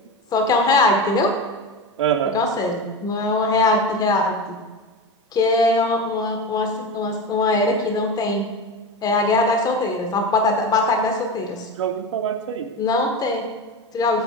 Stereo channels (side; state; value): both; normal; correlation 0.23